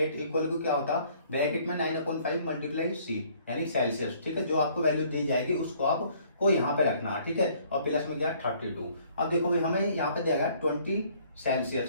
इक्वल टू क्या होता है, ब्रैकेट में 9/5 मल्टीप्लाई सी यानी सेल्सियस। ठीक है, जो आपको वैल्यू दी जाएगी उसको आपको यहाँ पे रखना है। ठीक है, और प्लस में क्या 32। अब देखो भाई, हमें यहाँ पे देगा 20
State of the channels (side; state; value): both; inverted; correlation -0.60